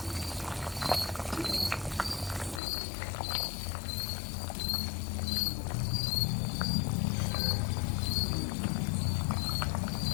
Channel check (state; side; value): drops out; right; at 2.6 s